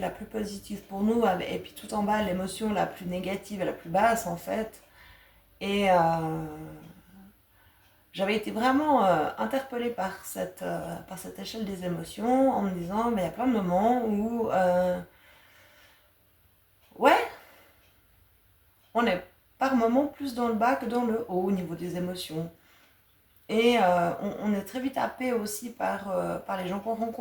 plus positive pour nous, et puis tout en bas, l'émotion la plus négative et la plus basse en fait. Et j'avais été vraiment interpellée par cette échelle des émotions en me disant, il y a plein de moments où, ouais, on est par moments plus dans le bas que dans le haut au niveau des émotions. Et on est très vite happé aussi par les gens qu'on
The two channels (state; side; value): identical; both; correlation 1.00